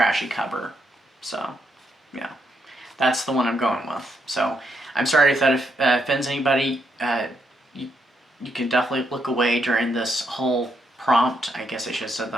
cover. So, yeah, that's the one I'm going with. So, I'm sorry if that offends anybody. You can definitely look away during this whole prompt. I guess I should have said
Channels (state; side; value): normal; both; correlation 0.78